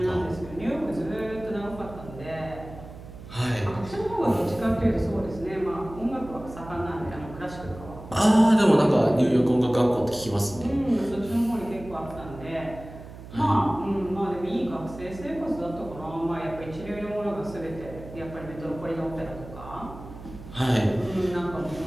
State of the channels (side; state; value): right; noise; hum, 15 dB below the sound